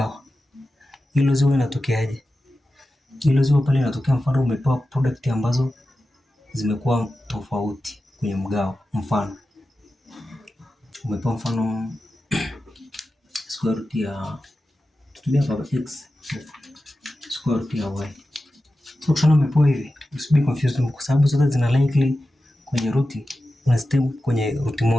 Hilo ziwe inatokeaje? Hilo ziwe pale inatokea mfano umepewa product ambazo zimekuwa tofauti kwenye mgao. Mfano umepewa mfano square root ya tutumia baba x square root ya y. So ukishana umepewa hivi, usibe confused kwa sababu zote zina likely kwenye root, unazitemu kwenye root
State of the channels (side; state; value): both; normal; correlation 0.93